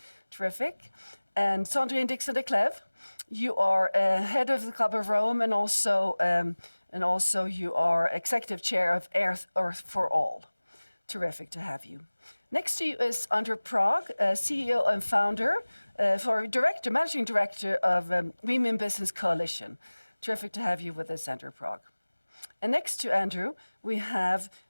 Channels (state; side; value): inverted; both; correlation -1.00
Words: Terrific. And Sandrine Dixson-Declève. You are head of the Club of Rome, and also you are executive chair of Earth for All. Terrific to have you. Next to you is Andreas Prag, CEO and founder, managing director of Women Business Coalition. Terrific to have you with us, Andreas Prag. And next to Andrew, we have